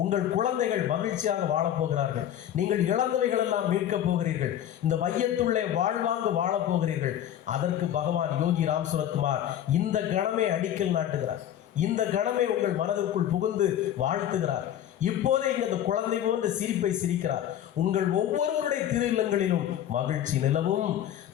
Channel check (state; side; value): quieter; right; 10.9 dB